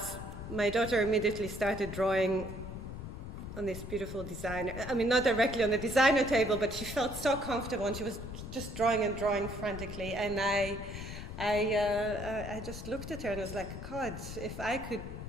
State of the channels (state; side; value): noise; left; rumble, 9 dB below the sound